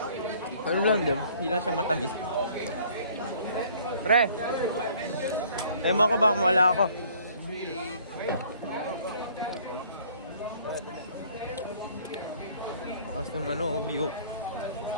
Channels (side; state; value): both; inverted; correlation -0.56